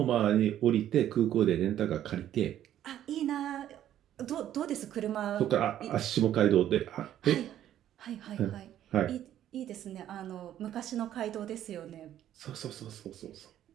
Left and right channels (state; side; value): quieter; left; 11.5 dB